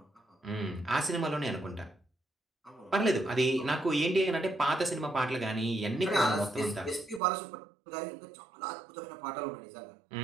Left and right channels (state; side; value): drops out; left; at 7.2 s